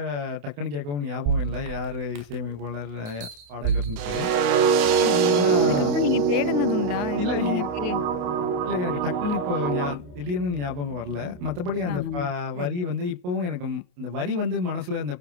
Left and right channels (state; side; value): late; left; 28 ms